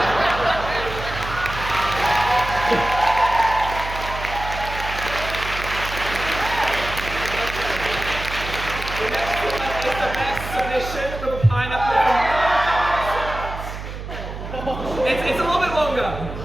It's a little bit longer.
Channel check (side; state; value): right; noise; hum, 8 dB below the sound